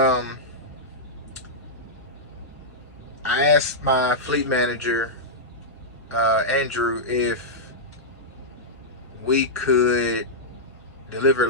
asked my fleet manager, Andrew, if we could deliver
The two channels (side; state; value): both; normal; correlation -0.09